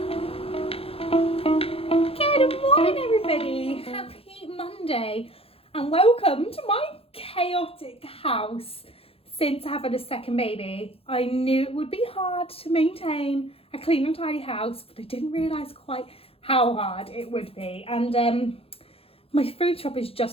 welcome to my chaotic house. Since having a second baby, I knew it would be hard to maintain a clean and tidy house, but I didn't realise quite how hard it would be. And my food shop has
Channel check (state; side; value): late; right; 0.28 ms